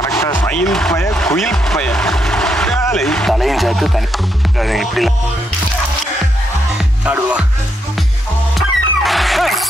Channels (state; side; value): normal; both; correlation 0.79